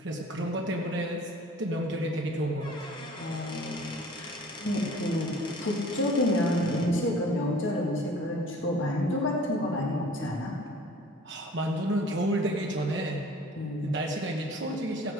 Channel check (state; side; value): normal; both; correlation 0.49